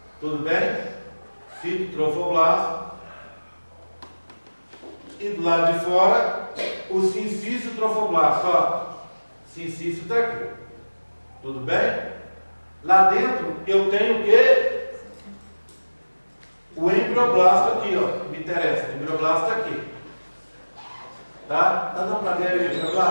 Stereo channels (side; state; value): both; inverted; correlation -1.00